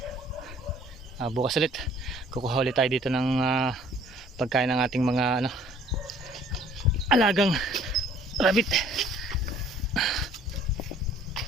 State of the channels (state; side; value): normal; both; correlation 0.56